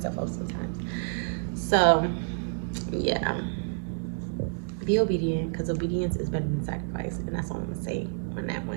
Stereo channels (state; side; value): silent; left; digital silence